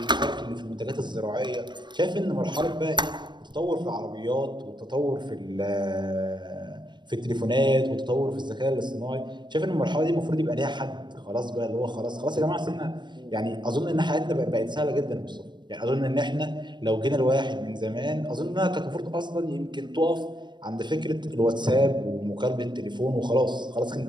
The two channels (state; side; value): late; left; 0.22 ms